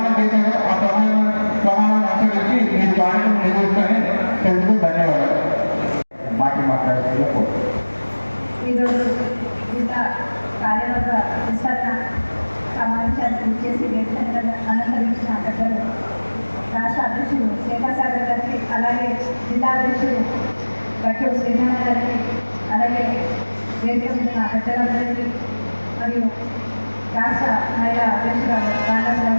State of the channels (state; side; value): inverted; both; correlation -1.00